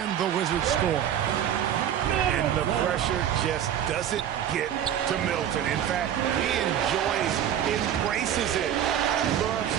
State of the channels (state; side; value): quieter; left; 10.1 dB